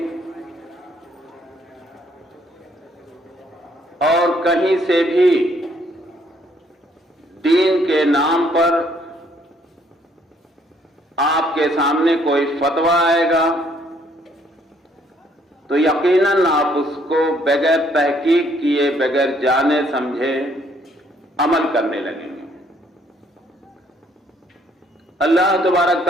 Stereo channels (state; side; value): normal; both; correlation 0.66